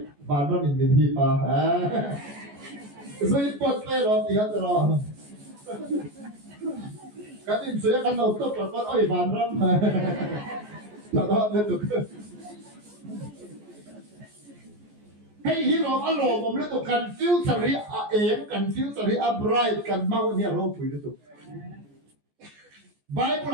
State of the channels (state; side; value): late; left; 14 ms